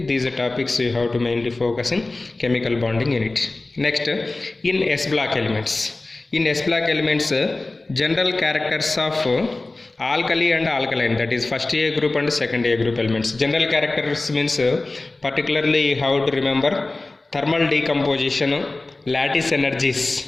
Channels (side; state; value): right; quieter; 3.1 dB